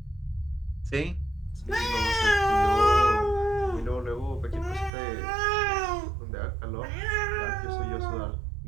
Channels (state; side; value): drops out; left; at 4.9 s